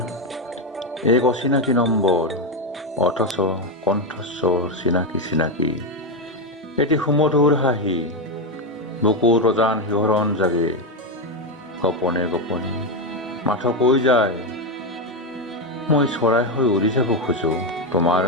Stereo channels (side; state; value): both; normal; correlation 0.08